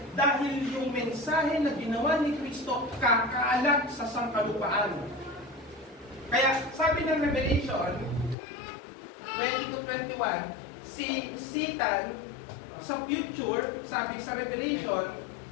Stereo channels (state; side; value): drops out; right; at 8.3 s